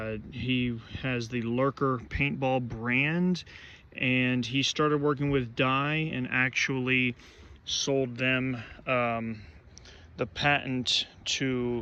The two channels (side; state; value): both; identical; correlation 1.00